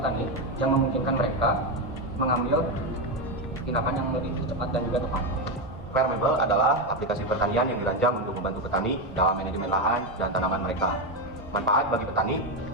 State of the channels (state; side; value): normal; both; correlation 0.09